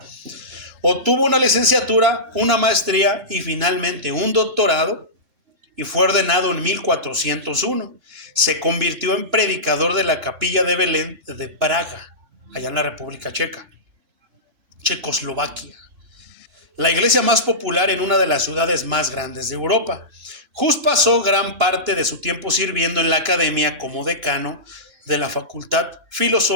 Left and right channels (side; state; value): left; late; 2.9 ms